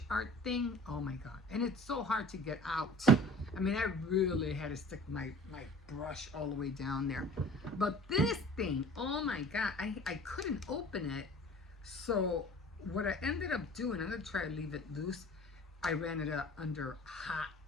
art thing, oh my God. And it's so hard to get out. I mean, I really had to stick my brush all the way down there. But this thing, oh my God, I couldn't open it. So what I ended up doing, I'm going to try to leave it loose. I ran it up under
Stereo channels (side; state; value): both; normal; correlation 0.45